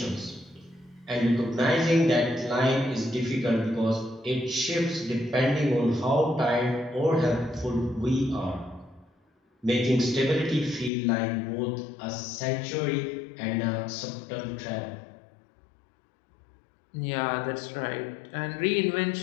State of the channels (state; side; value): drops out; right; at 10.9 s